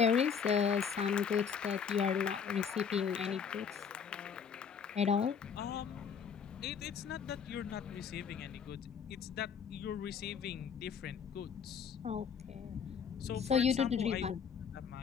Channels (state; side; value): quieter; right; 6.8 dB